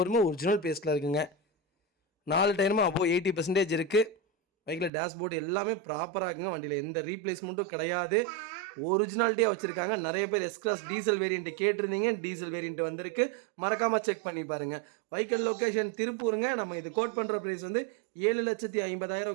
ஒரிஜினல் பேஸ்ட்டில் இருக்குங்க. 4 டயருமே அப்போது 80% இருக்குது. பைக்கில் டேஷ்போர்டு எல்லாமே ப்ராப்பராக இருக்குங்க. வண்டியில் எந்த ரீப்ளேஸ்மெண்ட்டும் கிடையாது. ஒரிஜினாலிட்டியாக வச்சுருக்காங்க. நிறைய பேர் எஸ்-கிளாஸ் டீசல் வேரியண்ட்டு கேட்டிருந்தீங்க. டீசல் வேரியண்ட் வந்திருக்கு. மறக்காமல் செக் பண்ணி பாருங்கள். வெஹிக்கிள் லொக்கேஷன் திருப்பூருங்க. நம்ம இது கோட் பண்ணுற ப்ரைஸ் வந்து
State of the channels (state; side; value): drops out; left; at 4.9 s